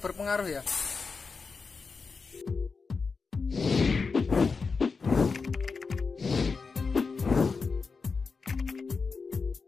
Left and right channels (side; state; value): right; quieter; 4.7 dB